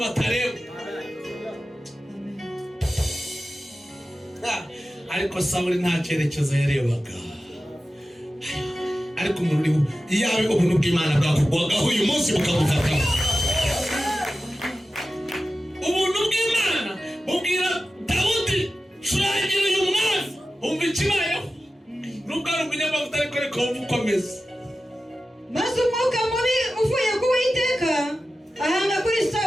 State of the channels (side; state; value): both; normal; correlation 0.94